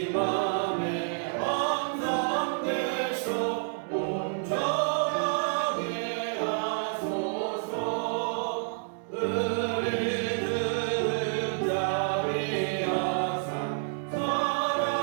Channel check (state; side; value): silent; left; digital silence